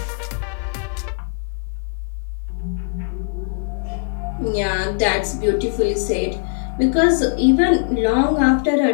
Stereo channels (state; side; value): silent; right; digital silence